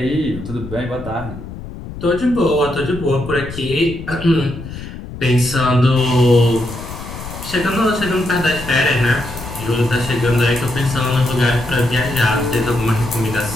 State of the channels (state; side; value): noise; left; rumble, 11 dB below the sound